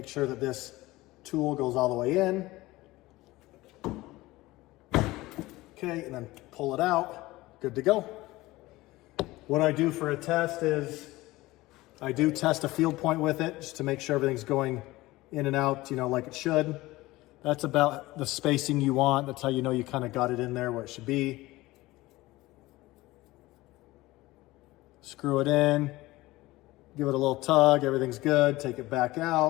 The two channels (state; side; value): quieter; right; 19.0 dB